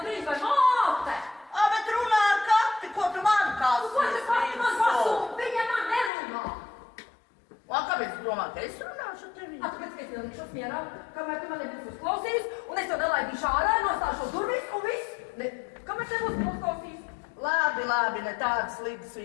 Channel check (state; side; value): drops out; right; at 6.1 s